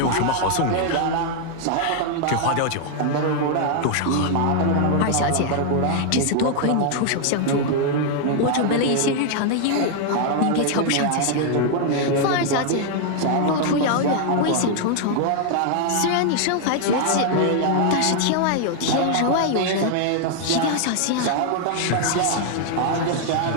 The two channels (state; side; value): different; both; correlation 0.00